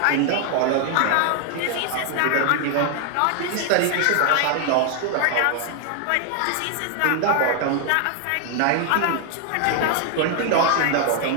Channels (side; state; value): both; different; correlation 0.00